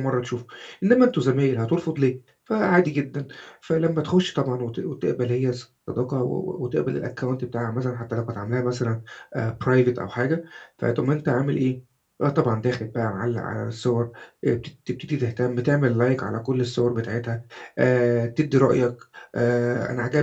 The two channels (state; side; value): identical; both; correlation 1.00